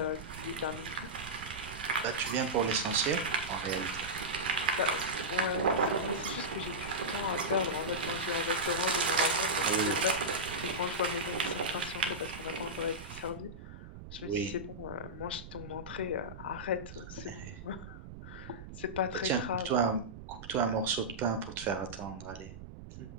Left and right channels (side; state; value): right; noise; rumble, 13 dB below the sound